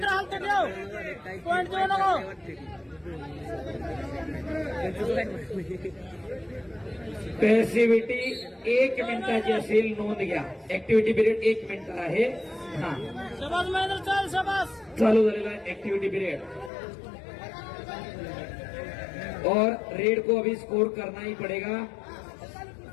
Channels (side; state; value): right; drops out; at 16.7 s